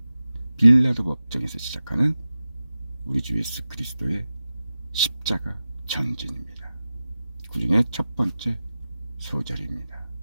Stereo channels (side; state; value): both; inverted; correlation -0.93